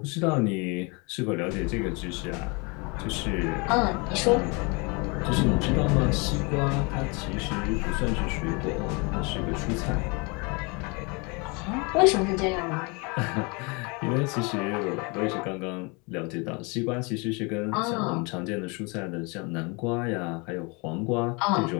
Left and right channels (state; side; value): quieter; right; 29.9 dB